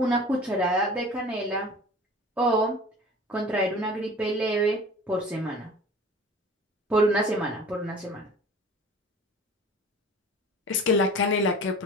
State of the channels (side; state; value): both; normal; correlation 0.42